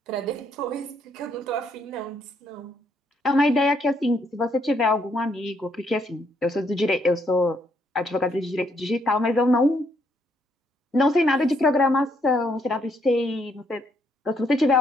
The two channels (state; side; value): normal; both; correlation 0.72